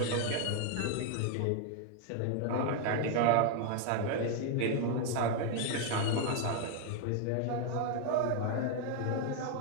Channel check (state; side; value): different; both; correlation 0.01